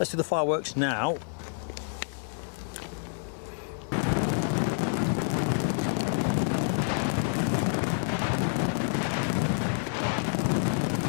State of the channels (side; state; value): right; silent; digital silence